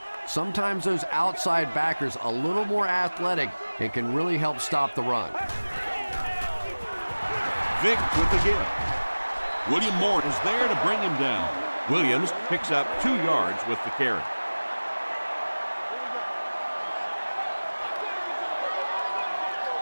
Sometimes those outside backers a little more athletic and can really help stop the run. Vick with the give. William Moore is there to bring him down. Williams picks up 2 yards with the carry.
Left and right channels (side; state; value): both; inverted; correlation -1.00